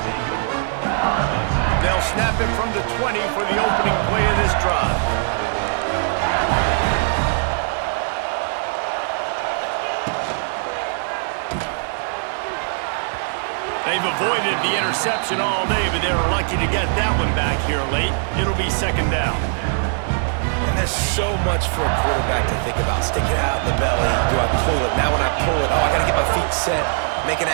They'll snap it from the 20 for the opening play of this drive. They've avoided the interception all day, but they were lucky to get that one back here late. It'll be second down. And there's so much for a quarterback to think about. Stick it out in the belly. Do I pull it? Now when I pull it, I got to get my feet set, make an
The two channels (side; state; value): left; silent; digital silence